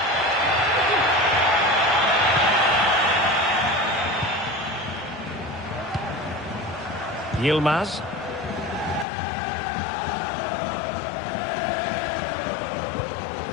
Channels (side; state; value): right; drops out; at 9.1 s